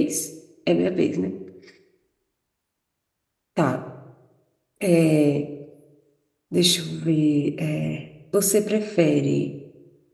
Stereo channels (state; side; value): identical; both; correlation 1.00